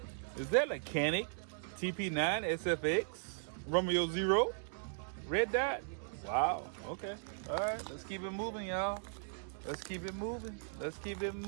Is that a Canic TP9 SFX Romeo 0 red dot? Wow. Okay. All right. Let's keep it moving, y'all. Let's keep it moving. Let's keep it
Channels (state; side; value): silent; left; digital silence